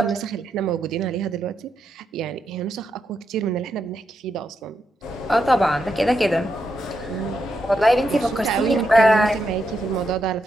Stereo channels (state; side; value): normal; both; correlation 0.83